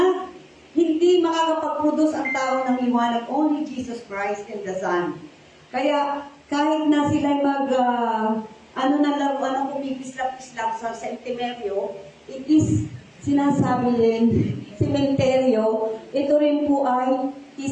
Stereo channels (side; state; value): both; identical; correlation 1.00